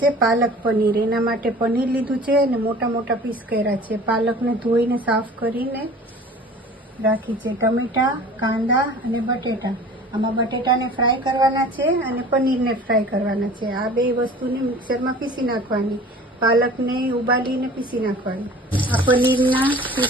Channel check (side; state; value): both; normal; correlation 0.44